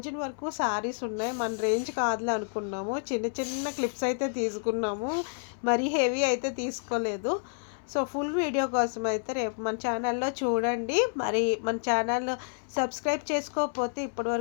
వరకు శారీస్ ఉన్నాయి. మన రేంజ్ కాదులే అనుకున్నాము, చిన్న చిన్న క్లిప్స్ అయితే తీసుకున్నాము, మరీ హెవీ అయితే తీసుకోలేదు. సో ఫుల్ వీడియో కోసం అయితే రేపు మన ఛానల్లో చూడండి. మరి మన ఛానల్ సబ్స్క్రైబ్ చేసుకోకపోతే ఇప్పటి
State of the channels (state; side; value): silent; right; 57 dB below the other